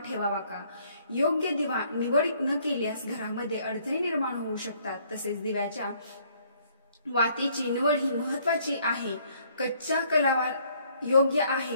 ठेवावा का? योग्य दिवा निवड न केल्यास घरामध्ये अडचणी निर्माण होऊ शकतात। तसेच दिव्याच्या वातीची निवड ही महत्त्वाची आहे। कच्च्या कलावा योग्य आहे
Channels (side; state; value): both; inverted; correlation -0.64